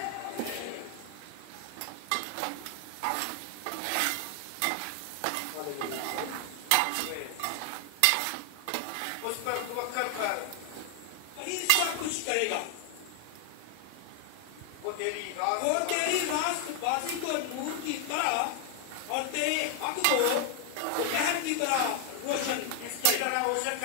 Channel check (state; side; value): different; both; correlation 0.00